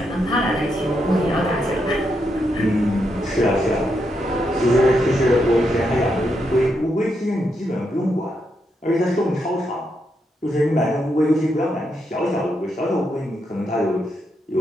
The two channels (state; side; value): normal; both; correlation 0.81